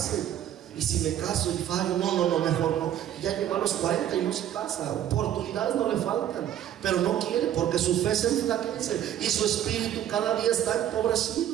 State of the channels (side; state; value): left; quieter; 11.1 dB